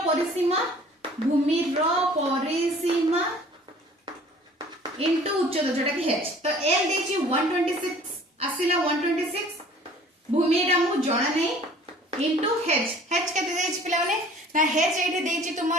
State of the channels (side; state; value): both; normal; correlation 0.51